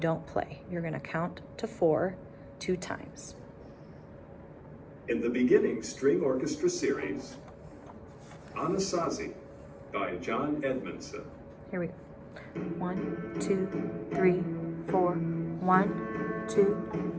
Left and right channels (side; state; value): both; identical; correlation 1.00